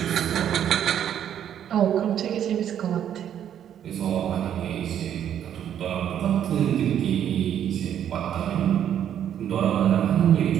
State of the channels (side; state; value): left; quieter; 9.8 dB